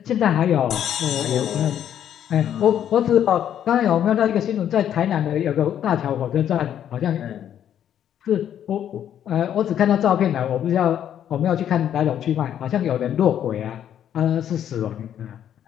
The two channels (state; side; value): quieter; right; 10.1 dB